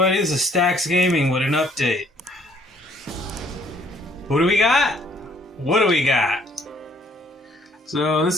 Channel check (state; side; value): normal; both; correlation 0.62